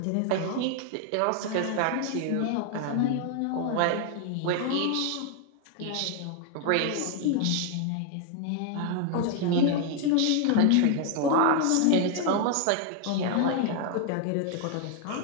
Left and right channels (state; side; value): different; both; correlation 0.00